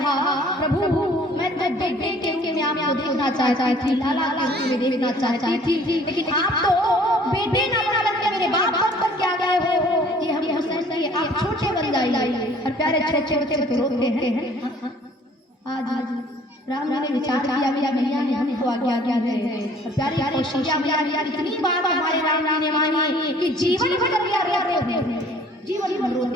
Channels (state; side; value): normal; both; correlation 0.54